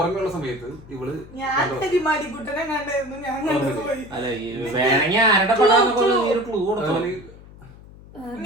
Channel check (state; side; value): noise; left; hum, 20 dB below the sound